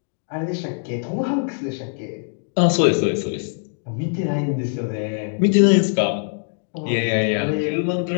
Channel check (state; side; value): silent; right; digital silence